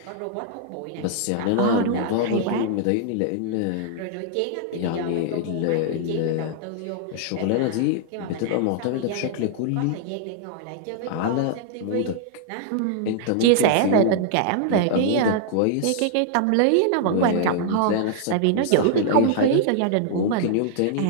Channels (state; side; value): different; both; correlation -0.01